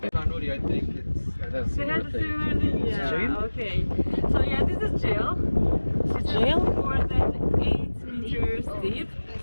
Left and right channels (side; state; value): both; inverted; correlation -1.00